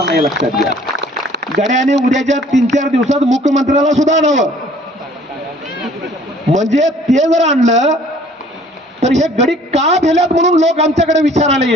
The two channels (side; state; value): both; normal; correlation 0.55